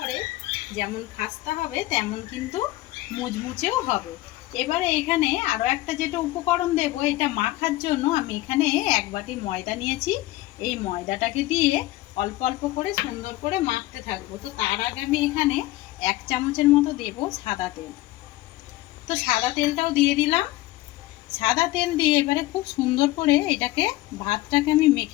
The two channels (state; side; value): quieter; right; 17.5 dB